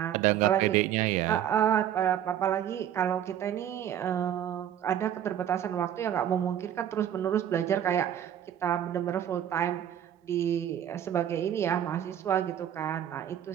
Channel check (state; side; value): quieter; left; 10.4 dB